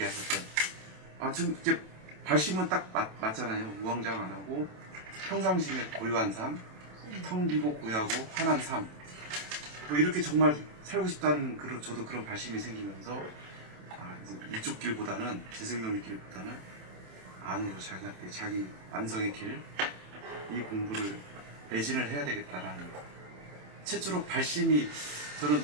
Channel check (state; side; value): late; left; 27 ms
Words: 지금 이제 발심은 딱 맞잖아요. 우왕좌왕 안 하고 평상시에 고요한 삶, 텅 비고 고요하고 환한 삶, 뭐 이렇게 정말 살고 싶다는 저도 그런 발심이 생기면서, 이제 이쪽 길보다는, 재생명의 길보다는 안으로 자기한테 자기 완성의 길, 이 공부를 매진을 해야 되겠다라는 최초로 발심이, 저는